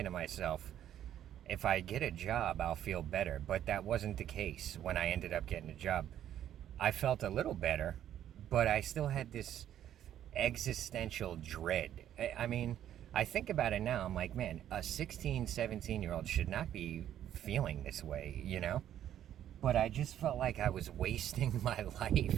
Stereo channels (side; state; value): left; quieter; 11.0 dB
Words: to myself, if I get a job, I'll feel better. But that wasn't the case when I ended up getting a job. I felt a little better, but I still had this existential dread. I mean, I think about it now, I'm like, man, a 16, 17-year-old should not be feeling this way. But I just felt like I was wasting my